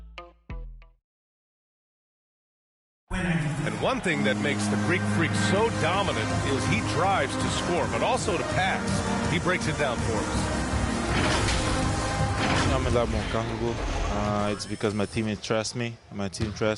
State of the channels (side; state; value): both; identical; correlation 1.00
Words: And one thing that makes the Greek Freak so dominant is he drives to score, but also to pass. He breaks it down for us. I'm a lot more comfortable. It's because my teammates trust me. My team